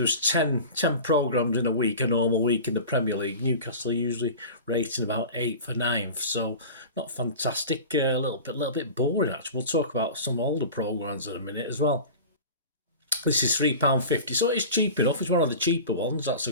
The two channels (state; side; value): inverted; both; correlation -0.35